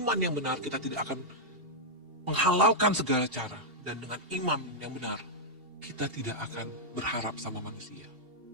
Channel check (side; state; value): left; late; 2.7 ms